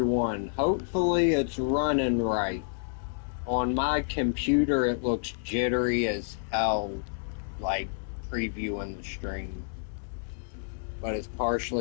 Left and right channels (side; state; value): right; silent; 58 dB below the other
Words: Hopefully it's running right. On my computer it looks jittery as hell, like previewing the stream. But it's